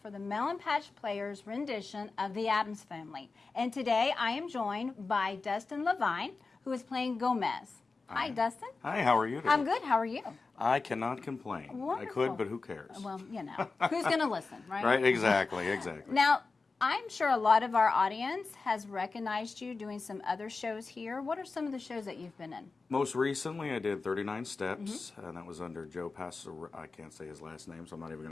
for the Melon Patch Players rendition of the Addams Family. And today I am joined by Dustin Levine, who is playing Gomez. Hi, Dustin. Hi, how are you today? I'm good. How are you? I cannot complain. Wonderful. I could, but who cares? Well, you know, who's going to listen, right? Right, exactly. Now, I'm sure a lot of our audience has recognized you doing some other shows here. What are some of the shows that you've been in? Most recently, I did 39 Steps, and that was under Joe Passero. I can't say his last name, so I'm not even going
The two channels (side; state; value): right; quieter; 4.1 dB